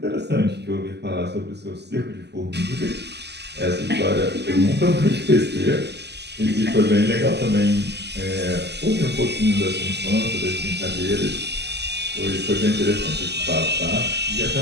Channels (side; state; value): left; late; 0.49 ms